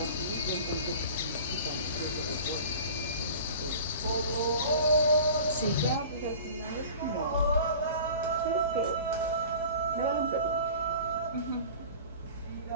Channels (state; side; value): inverted; both; correlation -0.41